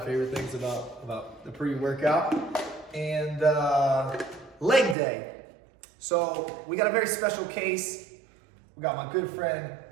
things about the pre-workout. And leg day. So we got a very special case. We got my good friend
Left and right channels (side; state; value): left; drops out; at 5.0 s